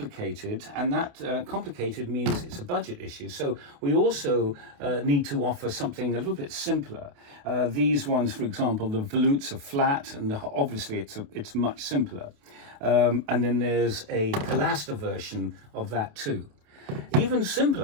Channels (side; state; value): left; late; 28 ms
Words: and that complicated means it's a budget issue. So we also need to offer something a little bit simpler. These ones, for example, the volutes are flat, and obviously it's much simpler. And then there's a pilaster version of that too. Even